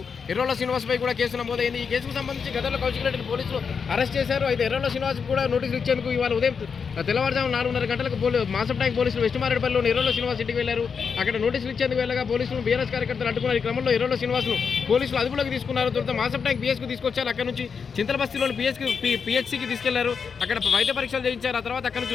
ఎర్రోల శ్రీనివాస్పై కూడా కేసు నమోదైంది. ఈ కేసుకు సంబంధించి గతంలో కౌశిక్ రెడ్డిని పోలీసులు అరెస్ట్ చేశారు. అయితే ఎర్రోల శ్రీనివాస్ కూడా నోటీసులు ఇచ్చేందుకు ఇవాళ ఉదయం తెల్లవారుజామున 4:30 గంటలకు మాసం ట్యాంక్ పోలీసులు వెస్ట్ మారేడుపల్లిలోని ఎర్రోల శ్రీనివాస్ ఇంటికి వెళ్లారు. అక్కడ నోటీసులు ఇచ్చేందుకు వెళ్ళగా పోలీసులు బీఆర్ఎస్ కార్యకర్తలు అడ్డుకున్నారు. ఈ క్రమంలో ఎర్రోల శ్రీనివాస్ను పోలీసులు అదుపులోకి తీసుకున్నారు. తర్వాత మాసం ట్యాంక్ పిఎస్కు తీసుకొచ్చారు. అక్కడ నుంచి చింతలబస్తీలోని పిహెచ్సికి తీసుకెళ్లారు. అక్కడ వైద్య పరీక్షలు చేయించారు. ఆ తర్వాత అక్కడ నుంచి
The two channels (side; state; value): right; quieter; 6.0 dB